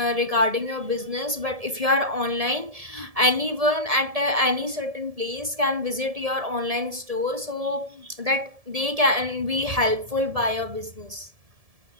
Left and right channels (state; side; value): late; left; 1.7 ms